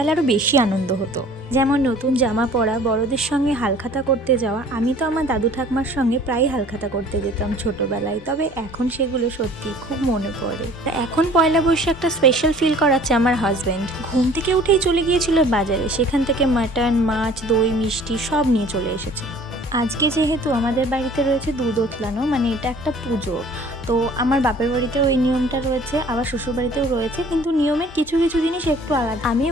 বেশি আনন্দ হতো, যেমন নতুন জামা পরা, বড়দের সঙ্গে হালখাতা করতে যাওয়া। আমি তো আমার দাদু ঠাকমার সঙ্গে প্রায় হালখাতা করতে যেতাম ছোটবেলায়, তবে এখন সেগুলো সত্যি খুব মনে পড়ে। এখন পয়লা বৈশাখটা স্পেশাল ফিল করাচ্ছে আমার হাজব্যান্ড। ঘুম থেকে উঠেই চলে গিয়েছিল বাজারে, সেখান থেকে মাটন, মাছ, দই, মিষ্টি সব নিয়ে চলে এসেছে। আজকে যেহেতু আমাদের বাড়িতে রয়েছে দুধ ওতলানো, মানে এটা একটা পুজো, তো আমার বাপের বাড়িতেও ওই নিয়মটা রয়েছে, আবার শ্বশুর বাড়িতেও রয়েছে, কিন্তু নিয়মের কিছু কিছু জিনিস একটু আলাদা। আমি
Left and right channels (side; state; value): both; normal; correlation 0.50